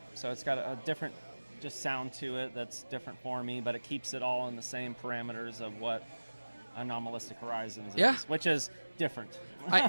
so it's got a different just sound to it that's different for me, but it keeps it all in the same parameters of what Anomalistic Horizons Yeah. is, which is different.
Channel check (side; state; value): both; inverted; correlation -1.00